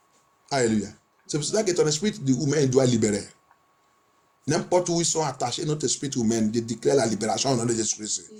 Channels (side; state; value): both; identical; correlation 1.00